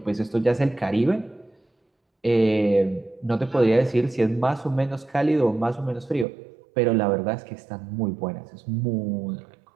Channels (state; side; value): drops out; left; at 6.2 s